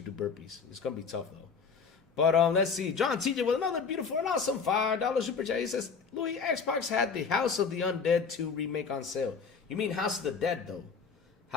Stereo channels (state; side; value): quieter; right; 5.5 dB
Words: do burpees. It's going to be tough, though. But let's see. John TJ with another beautiful and awesome $5 super chat. He says, Louis, Xbox had the House of the Undead 2 remake on sale. You mean House of the Dead, though?